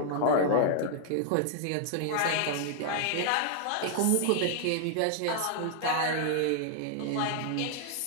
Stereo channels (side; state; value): both; different; correlation 0.00